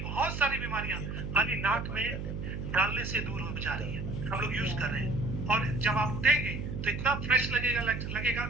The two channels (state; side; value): noise; right; hum, 5 dB below the sound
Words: सारी बीमारियां खाली नाक में डालने से दूर हो जा रही है। हम लोग यूज कर रहे हैं, और जब आप उठेंगे तो इतना फ्रेश लगेगा